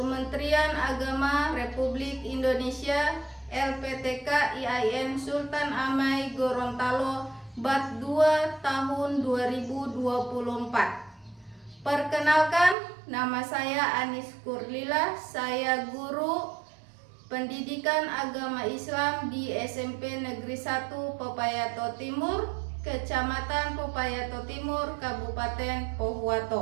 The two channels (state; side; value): drops out; left; at 12.8 s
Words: Agama Republik Indonesia LPTK IAIN Sultan Amai Gorontalo Bat 2 tahun 2024. Perkenalkan, nama saya Anis Kurlila, saya guru Pendidikan Agama Islam di SMP Negeri 1 Pepayato Timur, Kecamatan Pepayato Timur, Kabupaten